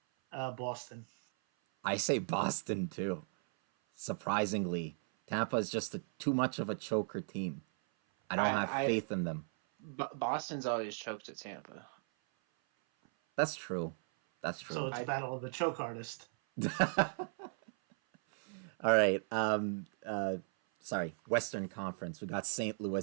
Boston. I say Boston too. Surprisingly, Tampa is just too much of a choker team. I don't have faith in them. Boston's always choked at Tampa. That's true. That's true. So it's battle of the choke artist. All right. Sorry. Western Conference. We got St.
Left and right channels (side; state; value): left; silent; 53 dB below the other